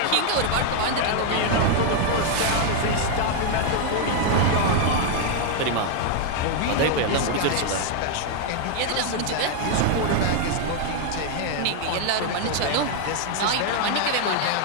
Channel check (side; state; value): both; different; correlation 0.00